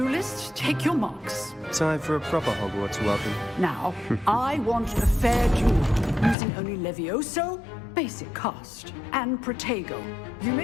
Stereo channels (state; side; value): drops out; right; at 6.4 s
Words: take your marks. Time for a proper Hogwarts welcome. Now, I want a fair duel, using only Levioso, basic cast, and Protego. You